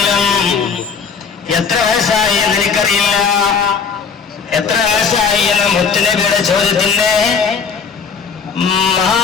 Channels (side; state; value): right; quieter; 5.9 dB